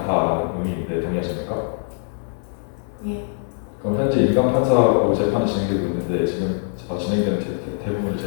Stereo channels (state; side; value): silent; right; digital silence